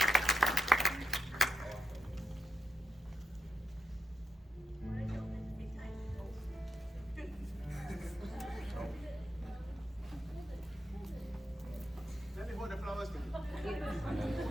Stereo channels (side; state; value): both; normal; correlation 0.87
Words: Let me hold the flowers to you.